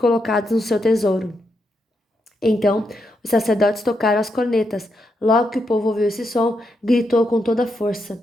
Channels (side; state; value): both; normal; correlation 0.82